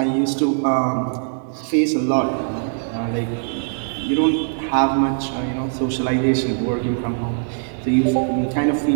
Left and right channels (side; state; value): left; silent; digital silence